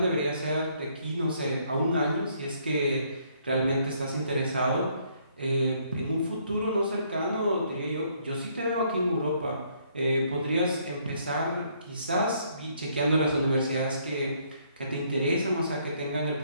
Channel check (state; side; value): inverted; both; correlation -0.68